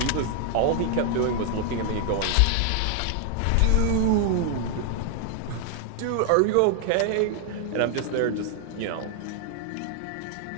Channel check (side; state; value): both; different; correlation 0.00